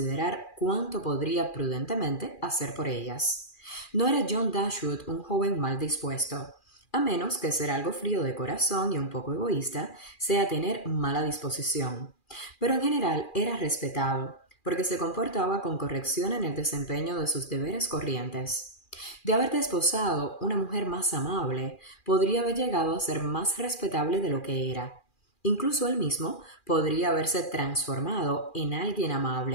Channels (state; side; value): late; right; 2.4 ms